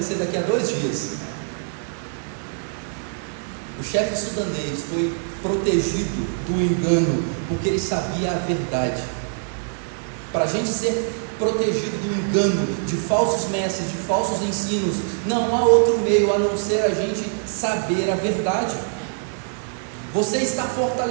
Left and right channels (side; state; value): left; silent; digital silence